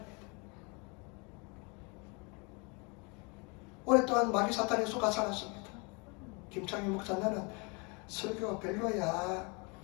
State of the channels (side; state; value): right; quieter; 31.1 dB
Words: 오랫동안 마귀 사탄에 속아 살았습니다. 김창희 목사, 너는 설교 별로야.